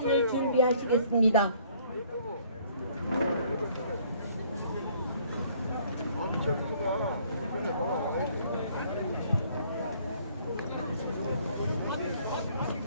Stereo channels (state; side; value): inverted; both; correlation -0.60